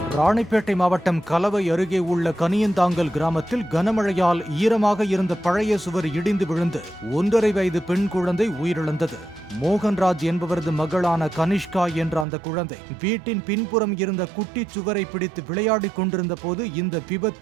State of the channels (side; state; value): left; drops out; at 12.2 s